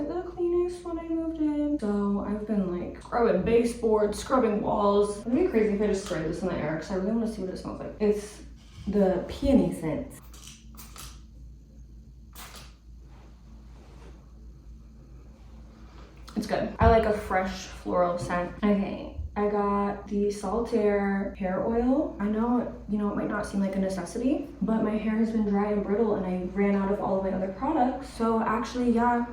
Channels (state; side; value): identical; both; correlation 1.00